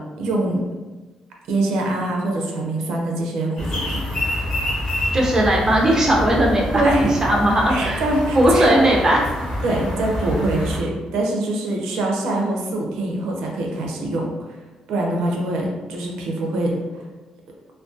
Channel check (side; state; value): both; normal; correlation 0.77